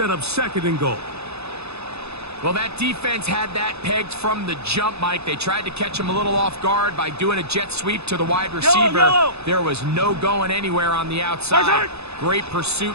up second and goal. Well, that defense had that pegged from the jump, Mike. They tried to catch him a little off guard by doing a jet sweep to the wide receiver. There was no going anywhere on the outside. Great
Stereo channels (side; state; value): left; late; 0.79 ms